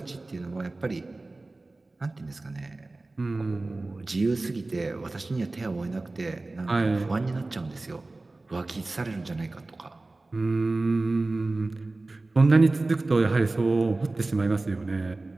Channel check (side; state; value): left; quieter; 3.1 dB